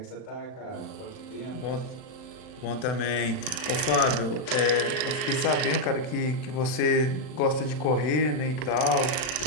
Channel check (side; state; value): right; late; 39 ms